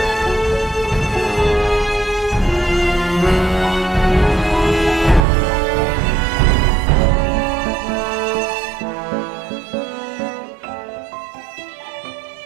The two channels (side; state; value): left; drops out; at 5.2 s